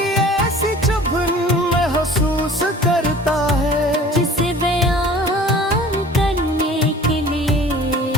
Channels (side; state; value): both; normal; correlation 0.46